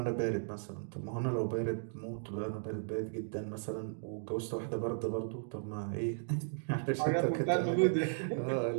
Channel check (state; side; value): silent; left; digital silence